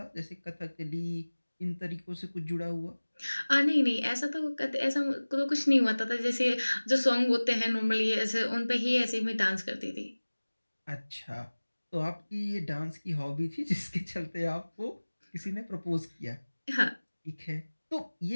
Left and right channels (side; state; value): both; inverted; correlation -1.00